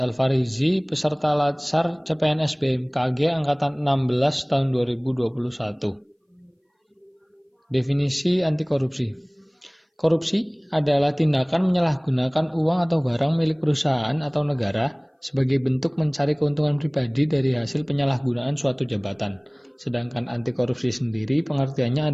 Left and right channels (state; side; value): identical; both; correlation 1.00